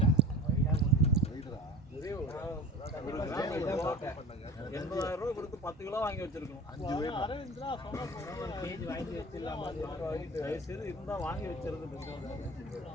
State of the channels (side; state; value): both; normal; correlation 0.38